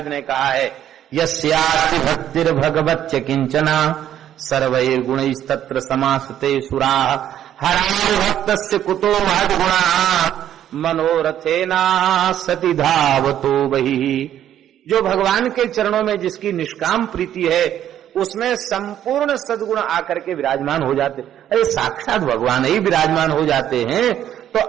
ने कहा है, यस्याति भक्तिर भगवच्च किंचना सर्वैर् गुणैस्तत्र समासते सुराः हरामि भक्तस्य कुतो महद्गुणाः मनोरथेना सति धावतो बहिः। जो भगवान के चरणों में जिसकी निष्काम प्रीति है उसमें संपूर्ण सद्गुण आकर के विराजमान हो जाते। अरे साक्षात भगवान ही विराजमान हो जाते हैं तो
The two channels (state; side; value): quieter; left; 10.9 dB